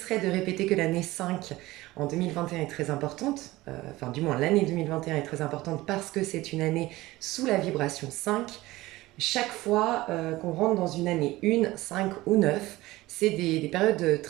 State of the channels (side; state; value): left; quieter; 18.5 dB